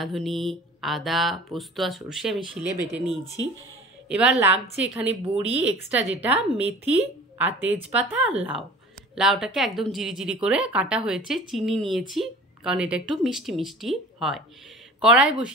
আদা, পোস্ত আর সর্ষে আমি শিলে বেটে নিয়েছি। এবার লাগছে এখানে বড়ি, এক্সট্রা যেটা, মেথি আর তেজপাতা আর লাউ। লাউটাকে একদম জিরি করে কাটা হয়েছে, চিনি নিয়েছি কারণ এটা একটু মিষ্টি মিষ্টি হয়। কড়াই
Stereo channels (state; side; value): normal; both; correlation 0.42